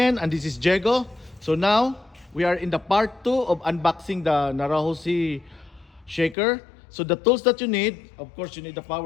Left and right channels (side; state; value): right; drops out; at 6.4 s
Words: and this is Diego. So now we are in the part 2 of unboxing the Naruhoshi shaker. So the tools that you need, of course, you need the